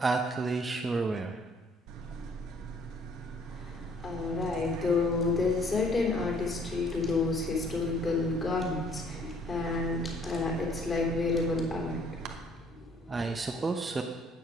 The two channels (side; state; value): both; normal; correlation 0.61